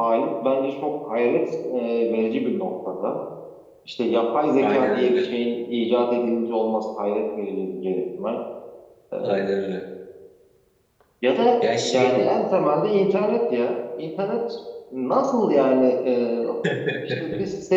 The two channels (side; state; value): both; identical; correlation 1.00